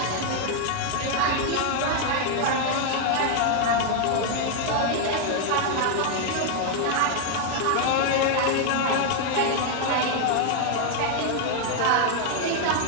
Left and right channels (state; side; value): different; both; correlation 0.00